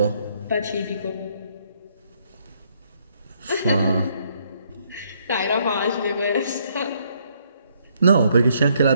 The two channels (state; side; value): inverted; both; correlation -0.70